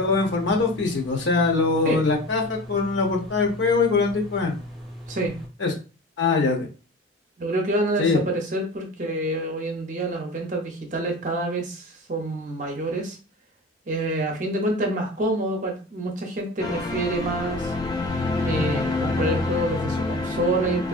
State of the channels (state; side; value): normal; both; correlation 0.35